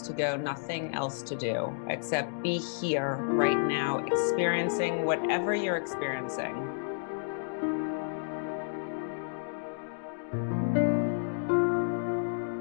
to go, nothing else to do, except be here right now, experiencing whatever you're experiencing.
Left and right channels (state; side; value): silent; right; digital silence